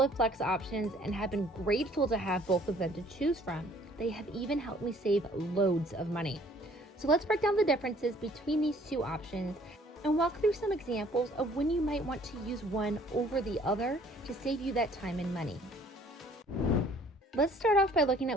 Flex options and have been grateful to have both of them to choose from. They have even helped me save loads of money. So let's break down the differences between these two options and walk through some examples of when you might want to use one over the other to save you that time and money. Let's start off by looking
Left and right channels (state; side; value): normal; both; correlation 0.57